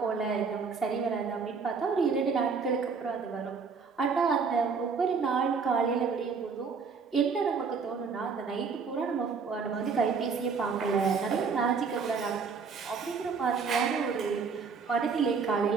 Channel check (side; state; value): left; quieter; 5.4 dB